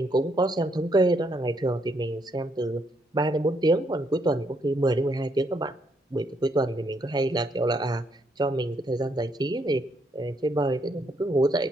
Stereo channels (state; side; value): normal; both; correlation 0.74